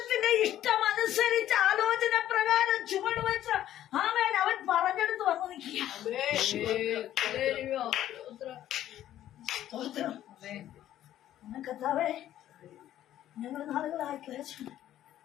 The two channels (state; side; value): quieter; right; 12.4 dB